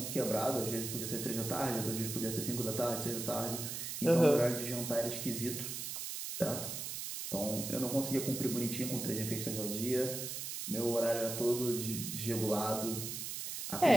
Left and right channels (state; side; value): noise; right; hiss, 5 dB below the sound